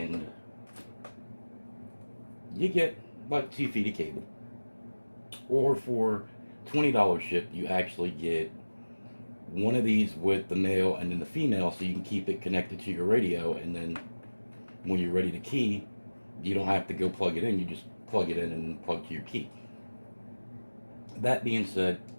you get like 2 feet of cable. Or for $20 shipped, you actually get one of these with the male and then the female, so you can keep it connected to your radio, and then when you're ready to key, you don't have to go plug it in, you just plug it in and plug to your key. That being said,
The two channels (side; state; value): both; inverted; correlation -1.00